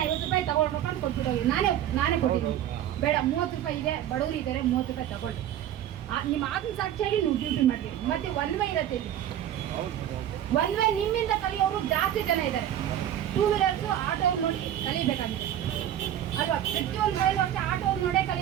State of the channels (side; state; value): left; quieter; 11.2 dB